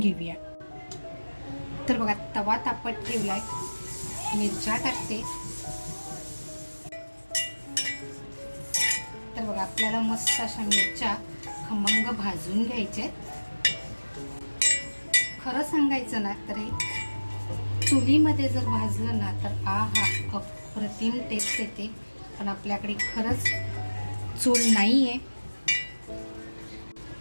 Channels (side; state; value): both; inverted; correlation -1.00